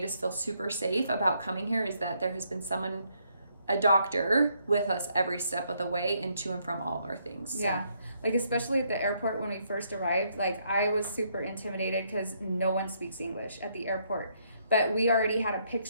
us feel super safe about coming here, is that there has been a doctor with us every step of the way and to and from all of our things. So. Yeah. Like especially at the airport when we first arrived, like I was super intimidated because no one speaks English at the airport. But we already had a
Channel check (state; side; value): inverted; both; correlation -0.73